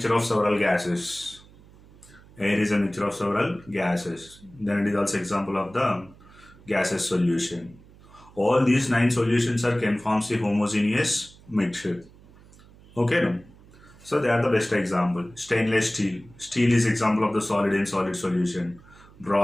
of several gases. Air is a mixture of several gases. Then it is also example of the gaseous solution. All these 9 solutions can form a homogeneous mixture. Okay, no? So they are the best example. Stainless steel. Steel is example of the solid in solid solution.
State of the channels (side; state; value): right; noise; hum, 24 dB below the sound